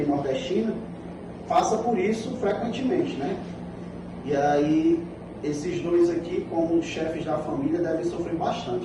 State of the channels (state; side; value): identical; both; correlation 1.00